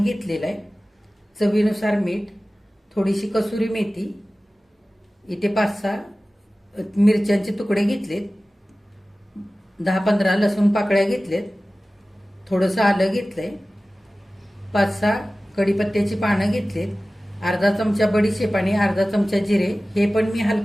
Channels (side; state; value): both; normal; correlation 0.97